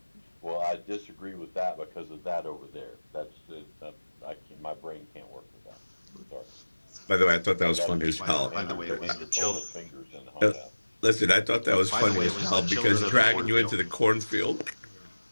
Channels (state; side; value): inverted; both; correlation -1.00